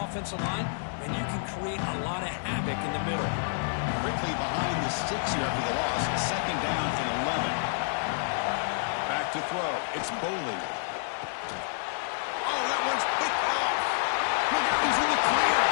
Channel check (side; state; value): right; silent; 58 dB below the other